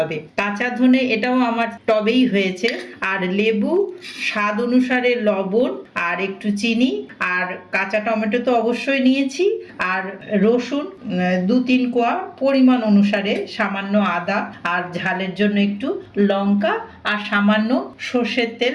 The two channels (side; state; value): both; identical; correlation 1.00